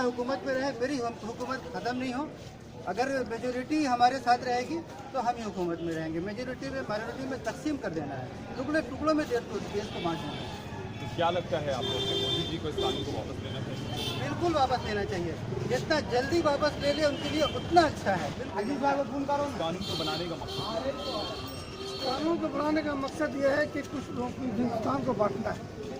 में रहें, मेरी हुकूमत ख़त्म नहीं हो। अगर मेजोरिटी हमारे साथ रहेगी तो हम ही हुकूमत में रहेंगे। मेजोरिटी में माइनॉरिटी में तकसीम कर देना है, टुकड़ों में देश को बांटना है। तो क्या लगता है आपको कि मोदी जी को इस कानून को वापस लेना चाहिए? बिल्कुल वापस लेना चाहिए, जितना जल्दी वापस ले ले उनके लिए उतना अच्छा है। कानून को बनाने का मकसद कानून को बनाने का मकसद ये है कि कुछ लोगों की हिंदुस्तान को बांटना है।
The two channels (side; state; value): both; identical; correlation 1.00